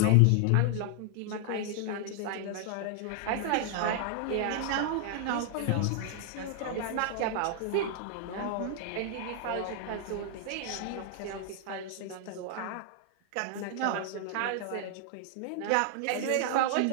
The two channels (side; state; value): both; different; correlation 0.00